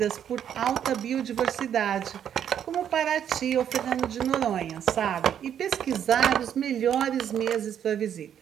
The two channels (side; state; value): left; quieter; 9.3 dB